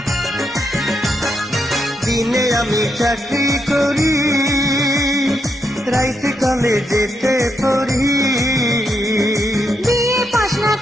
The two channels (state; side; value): normal; both; correlation 0.81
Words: দিনে আমি চাকরি করি, রাইতে কলেজেতে পড়ি। বিয়ে পাস না